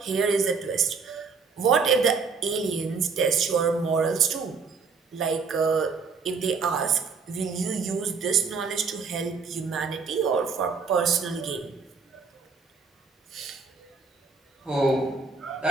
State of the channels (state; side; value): quieter; left; 5.0 dB